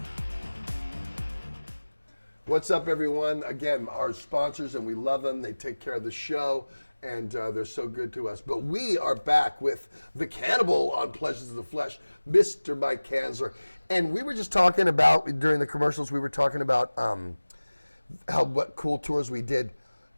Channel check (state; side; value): inverted; both; correlation -1.00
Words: What's up, everyone? Again, our sponsors, and we love them. They take care of the show, and they're so good to us. But we are back with the Cannibal on Pleasures of the Flesh, Mr. Mike Kanzler. And we were just talking about, during the commercials, we were talking about what cool tours we did.